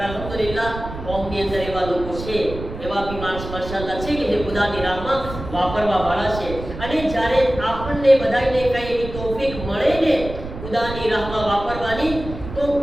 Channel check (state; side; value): noise; right; rumble, 10 dB below the sound